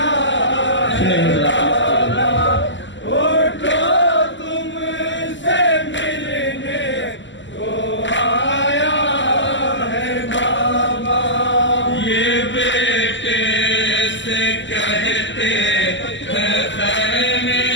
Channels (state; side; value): late; right; 0.54 ms